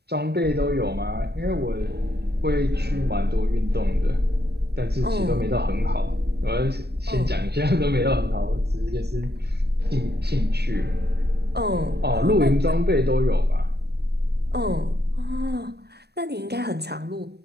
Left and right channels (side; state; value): left; late; 0.47 ms